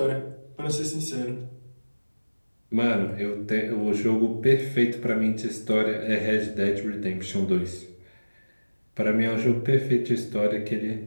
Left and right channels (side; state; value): both; inverted; correlation -1.00